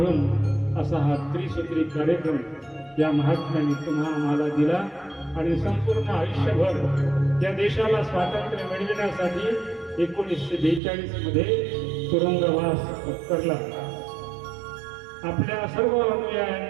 असा हा त्रिसूत्री कार्यक्रम या महात्म्याने तुम्हा आम्हाला दिला आणि संपूर्ण आयुष्यभर या देशाला स्वातंत्र्य मिळविण्यासाठी 1942 मध्ये तुरुंगवास पत्करला. आपल्या सर्व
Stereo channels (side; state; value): left; drops out; at 10.8 s